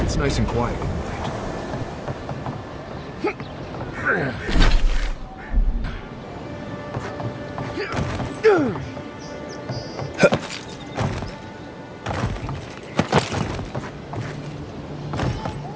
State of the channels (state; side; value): identical; both; correlation 1.00